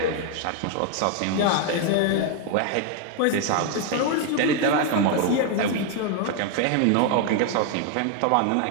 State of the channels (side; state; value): both; different; correlation 0.00